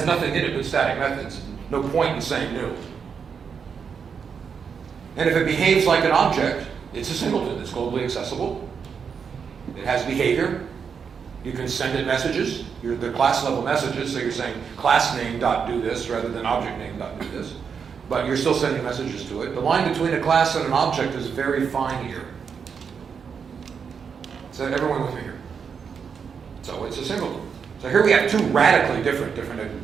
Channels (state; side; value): quieter; left; 6.4 dB